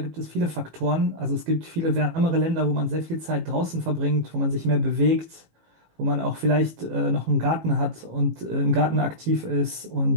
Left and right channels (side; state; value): left; late; 18 ms